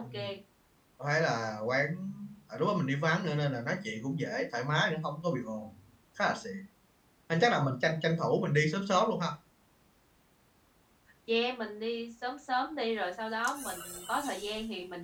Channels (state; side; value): identical; both; correlation 1.00